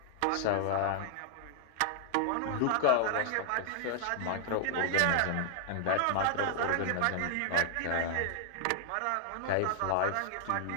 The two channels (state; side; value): different; both; correlation 0.00